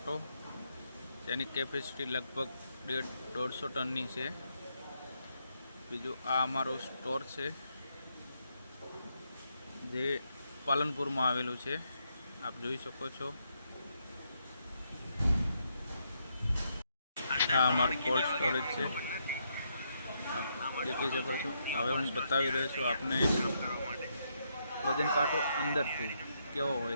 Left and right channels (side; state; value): both; inverted; correlation -0.78